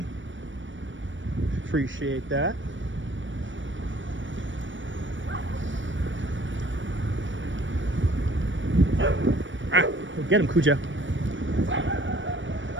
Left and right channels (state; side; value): late; left; 0.56 ms